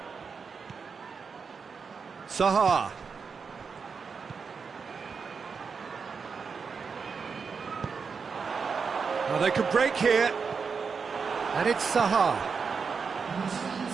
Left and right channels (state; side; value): quieter; left; 5.5 dB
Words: Zaha. Well, they could break here. And it's Zaha.